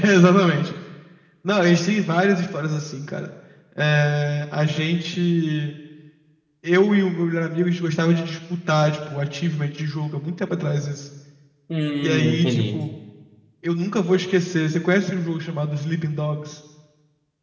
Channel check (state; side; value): identical; both; correlation 1.00